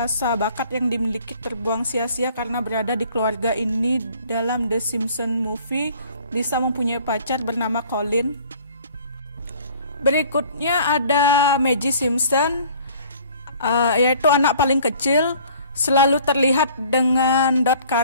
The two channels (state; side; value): inverted; both; correlation -0.53